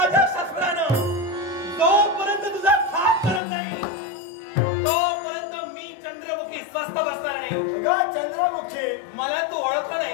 शस्त्रानं जोपर्यंत तुझा खाप करत नाही तोपर्यंत मी चंद्रमुखी स्वस्थ बसणार नाही. चंद्रमुखी मला तू ओळखलं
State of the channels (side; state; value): right; drops out; at 3.4 s